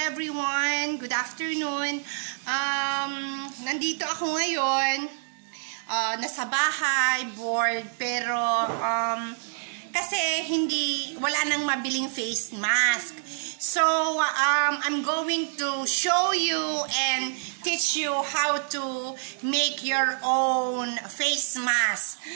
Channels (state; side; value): silent; left; digital silence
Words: everyone! Good afternoon! Nandito ako ngayon. Nasa bahay, bored, pero kasi wala nang mabiling face mask. So, I'm going to show you and teach you how to make your own face mask.